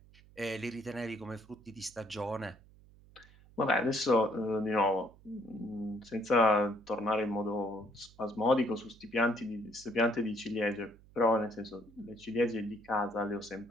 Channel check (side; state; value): right; noise; hum, 25 dB below the sound